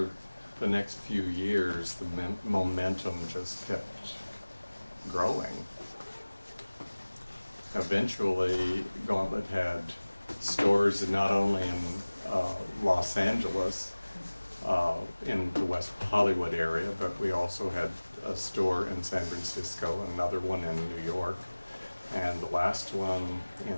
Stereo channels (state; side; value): inverted; both; correlation -1.00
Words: the next few years, the momentum just kept growing. Eventually, Gauntlet had stores not only in Los Angeles, in the West Hollywood area, but we also had a store in San Francisco, another one in New York, and the last one